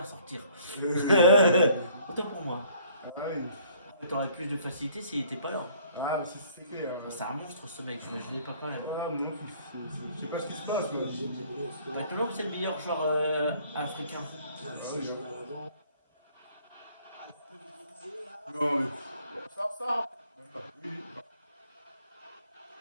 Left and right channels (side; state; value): both; inverted; correlation -0.58